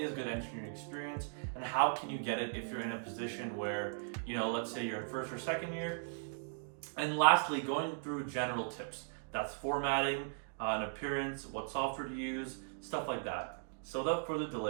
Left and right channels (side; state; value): left; silent; digital silence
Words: good engineering experience and how can you get it if you're in a position where, let's say you're in first or second year. And lastly, going through general tips. That's formatting, an appearance, what software to use, stuff like that. So without further